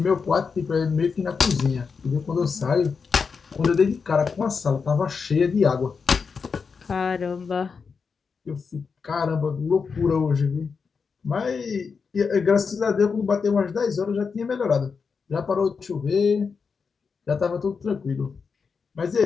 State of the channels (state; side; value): quieter; right; 5.4 dB